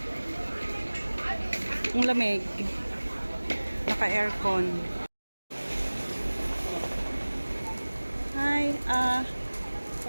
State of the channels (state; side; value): inverted; both; correlation -1.00